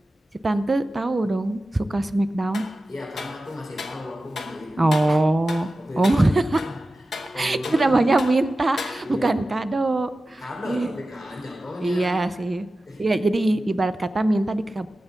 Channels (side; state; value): both; normal; correlation 0.94